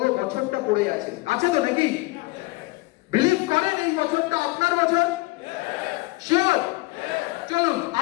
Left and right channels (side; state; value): right; quieter; 22.8 dB